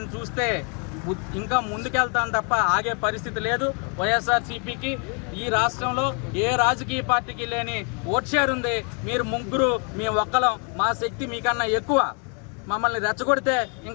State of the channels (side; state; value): right; quieter; 38.3 dB